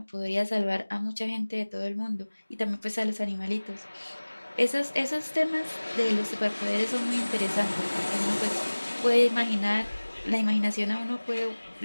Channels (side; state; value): both; inverted; correlation -1.00